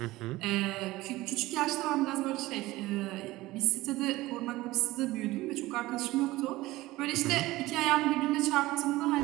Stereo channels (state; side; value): quieter; left; 18.5 dB